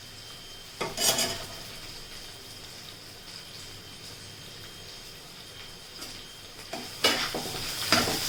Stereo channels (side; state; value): both; identical; correlation 1.00